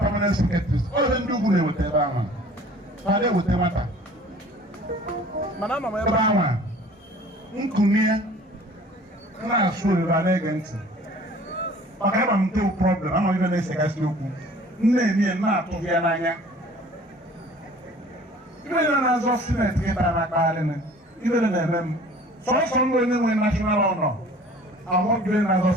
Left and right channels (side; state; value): both; normal; correlation 0.49